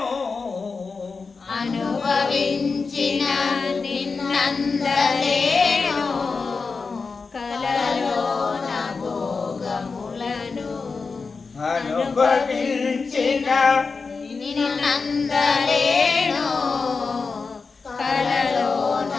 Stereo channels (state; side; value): quieter; right; 4.6 dB